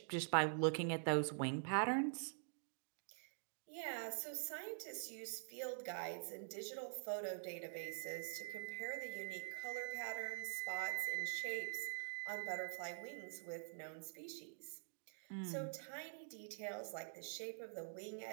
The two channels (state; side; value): silent; left; digital silence